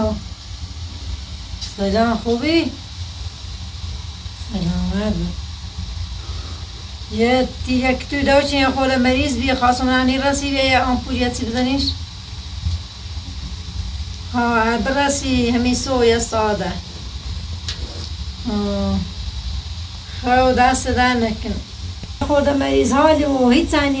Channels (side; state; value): both; identical; correlation 1.00